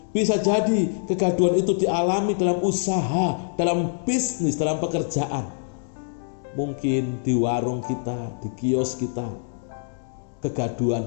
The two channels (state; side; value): silent; right; digital silence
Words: Bisa jadi kegaduhan itu dialami dalam usaha, dalam bisnis, dalam pekerjaan. Mungkin di warung kita, di kios kita,